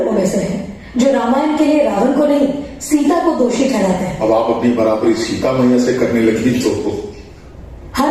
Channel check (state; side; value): identical; both; correlation 1.00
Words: में से हैं जो रामायण के लिए रावण को नहीं, सीता को दोषी ठहराते हैं। अब आप अपनी बराबरी सीता मैया से करने लगी तो